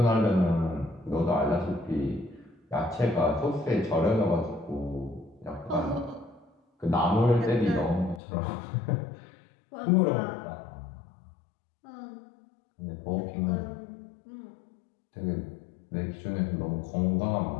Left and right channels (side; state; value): right; drops out; at 8.2 s